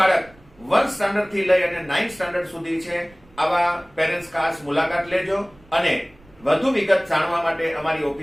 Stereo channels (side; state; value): right; noise; rumble, 27 dB below the sound